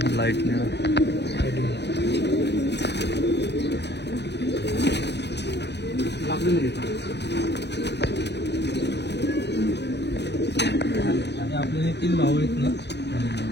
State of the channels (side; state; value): right; late; 0.50 ms